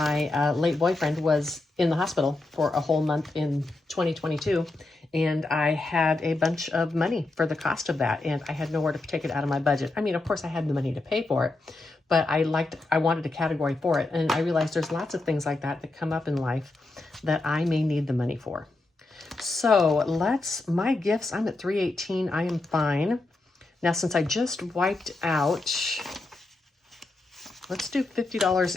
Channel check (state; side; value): quieter; right; 3.1 dB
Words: late boyfriend was in the hospital for a whole month in 2022. And I had a bunch of money for the cost of that. And I had nowhere to take it out of my budget. I mean, of course I had the money to pay for it, but I wanted a category for it. And I realized there's lots of things like that that come up in life that I may need the money for. So my gifts, I'm at 318. I am fine. Now, since I just wiped out, let's do $50